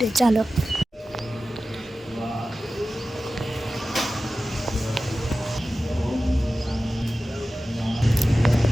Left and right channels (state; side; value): normal; both; correlation 0.94